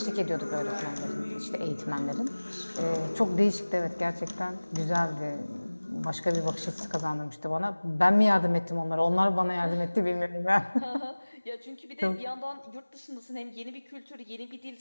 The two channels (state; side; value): inverted; both; correlation -1.00